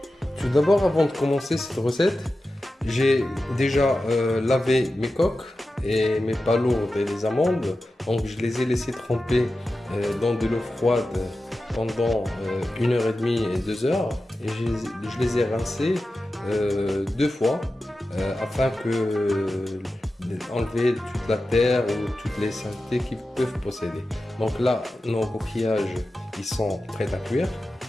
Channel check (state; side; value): normal; both; correlation 0.93